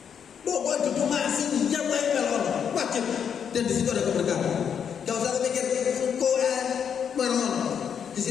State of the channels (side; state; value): right; quieter; 7.7 dB